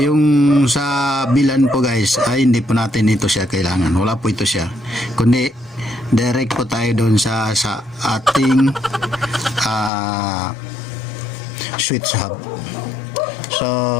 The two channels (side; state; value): right; drops out; at 9.9 s